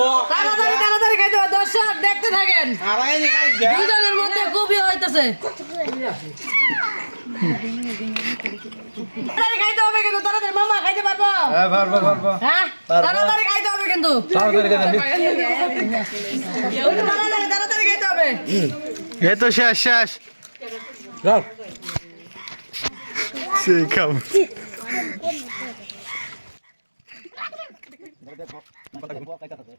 তাড়াতাড়ি তাড়াতাড়ি খাইতে হবে। দর্শক দেখতে থাকেন, দুজনের মধ্যে খুবই হইতেছে। তাড়াতাড়ি খাইতে হবে কিন্তু, তাড়াতাড়ি। মামা খাইতে পারবো? হ্যাঁ পারবো পারবো। হ্যাঁ তাড়াতাড়ি খাইতে হবে কিন্তু, তাড়াতাড়ি তাড়াতাড়ি তাড়াতাড়ি খাইতে হবে। এই তো শেষ শেষ যাও সেই কাম তাড়াতাড়ি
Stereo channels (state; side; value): inverted; both; correlation -1.00